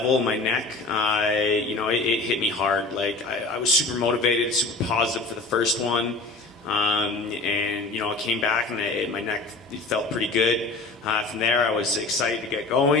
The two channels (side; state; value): right; quieter; 3.4 dB